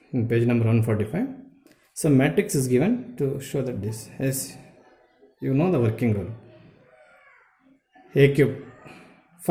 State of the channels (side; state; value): both; identical; correlation 1.00